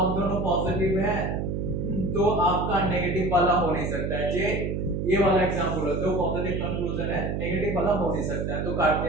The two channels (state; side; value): noise; right; hum, 2 dB below the sound